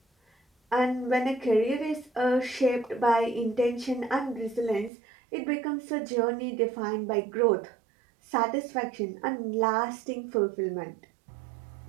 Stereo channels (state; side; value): drops out; left; at 4.9 s